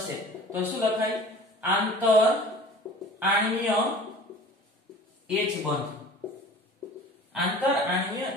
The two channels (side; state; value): both; normal; correlation 0.43